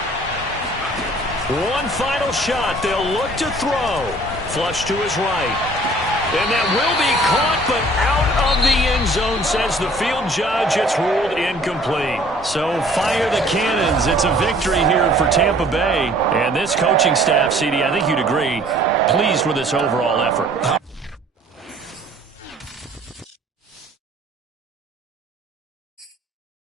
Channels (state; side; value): normal; both; correlation 0.54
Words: One final shot. They'll look to throw. Flush to his right. And that will be caught, but out of the end zone, says the field judge. It's ruled incomplete. So fire the cannons. It's a victory here for Tampa Bay. And this coaching staff, CD, I think you'd agree, pleased with this overall effort.